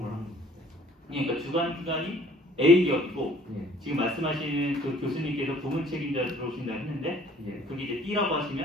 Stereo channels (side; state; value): both; normal; correlation 0.56